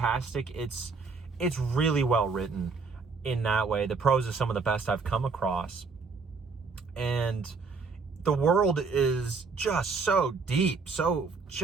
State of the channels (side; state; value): left; quieter; 4.7 dB